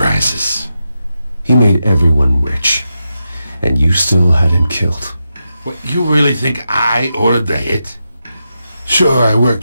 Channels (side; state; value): both; inverted; correlation -0.88